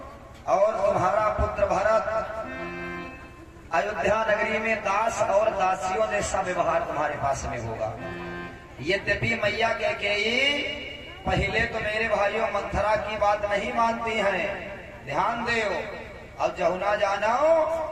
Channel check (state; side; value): identical; both; correlation 1.00